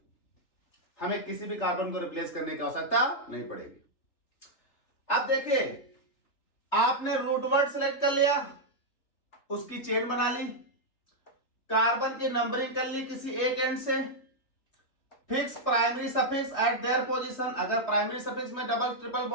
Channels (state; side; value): late; right; 3.4 ms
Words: हमें किसी भी कार्बन को रिप्लेस करने की आवश्यकता नहीं पड़ेगी। अब देखिए, आपने रूट वर्ड सेलेक्ट कर लिया, उसकी चेन बना ली, कार्बन की नंबरिंग कर ली किसी एक एंड से, fix primary suffix eight their position. अगर प्राइमरी सफिक्स में डबल ट्रिपल